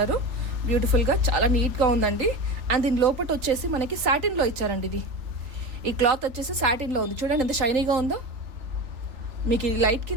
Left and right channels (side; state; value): left; late; 3.4 ms